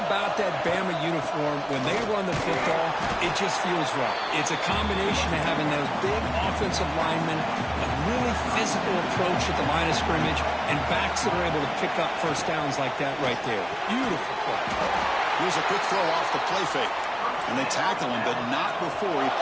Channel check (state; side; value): identical; both; correlation 1.00